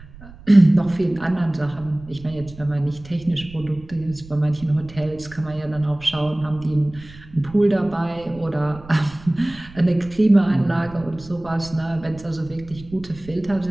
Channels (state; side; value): noise; right; rumble, 19 dB below the sound